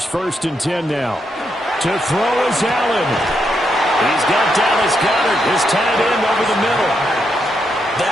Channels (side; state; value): both; normal; correlation 0.80